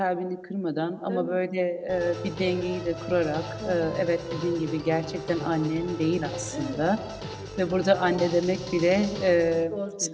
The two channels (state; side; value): identical; both; correlation 1.00